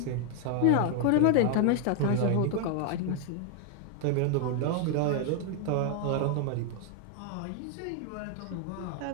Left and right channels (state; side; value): different; both; correlation 0.00